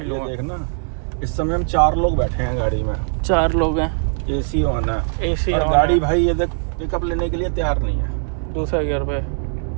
ये हुआ। देख ना, इस समय हम 4 लोग बैठे हैं गाड़ी में, 4 लोग हैं, एसी ऑन है, एसी और ऑन गाड़ी है। भाई ये देख पिकअप लेने के लिए तैयार नहीं है। दूसरे गियर पे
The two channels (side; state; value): left; silent; 61 dB below the other